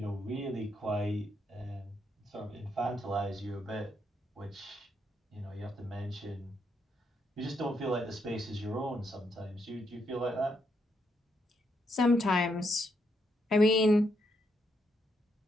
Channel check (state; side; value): normal; both; correlation 0.78